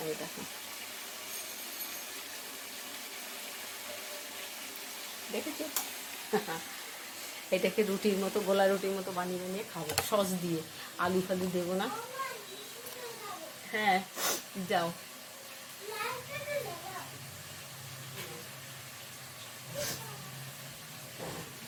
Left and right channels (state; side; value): identical; both; correlation 1.00